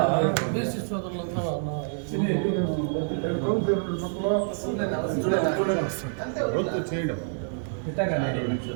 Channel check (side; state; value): left; silent; digital silence